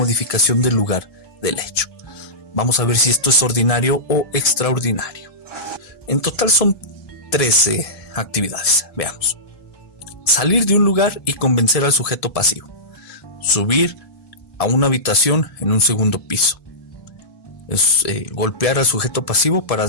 del lugar del hecho. Vamos a ver si esto es ordinario o extraordinario. En total son 13 actividades. Veamos. Salir de un lugar y convencer al sujeto pasivo. Subir a una habitación en un segundo piso. Golpear al sujeto pasivo para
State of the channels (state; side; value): late; right; 1.7 ms